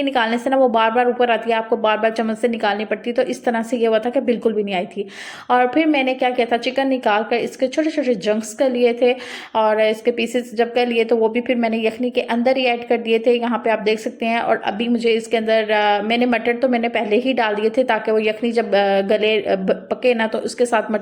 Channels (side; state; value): both; identical; correlation 1.00